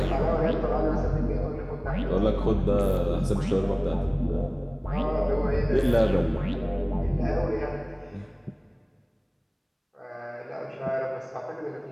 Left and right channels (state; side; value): identical; both; correlation 1.00